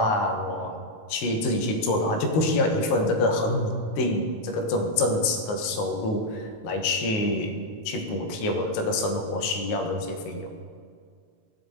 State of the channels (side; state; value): right; late; 19 ms